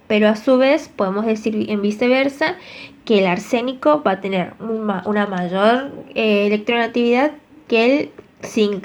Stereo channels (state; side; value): identical; both; correlation 1.00